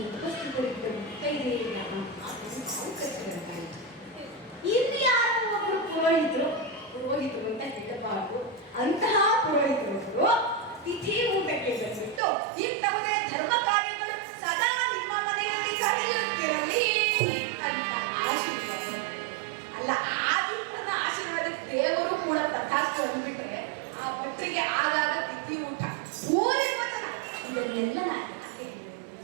ಉಪಸ್ಥಿತರಿದ್ದ ಮುತ್ತೈದೆಯರ ಇಲ್ಲಿ ಯಾರೋ ಒಬ್ಬರು ಪುರೋಹಿತರು ಅಂತ ಹೇಳಬಾರದು, ಅಂತಹ ಪುರೋಹಿತರು ತಿಥಿ ಊಟಕ್ಕೆ ಬಂದ್ಬಿಟ್ಟು ಇಂತಹುದೇ ಧರ್ಮ ಕಾರ್ಯಗಳು ಸದಾ ನಿಮ್ಮ ಮನೆಯಲ್ಲಿ ನಡೆಯುತ್ತಿರಲಿ ಅಂತ ಆಶೀರ್ವಾದ. ಅಲ್ಲ, ಆದಿತ್ಯನ ಆಶೀರ್ವಾದಕ್ಕೆ ದೇವರು ಕೂಡ ತಥಾಸ್ತು ಅಂದ್ಬಿಟ್ರೆ ಆ ಭಟ್ರಿಗೆ ಆಗಾಗ ತಿಥಿ ಊಟ ಪೂಜೆ ವಚನ ಇದನ್ನೆಲ್ಲ ನಾನು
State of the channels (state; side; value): drops out; left; at 12.2 s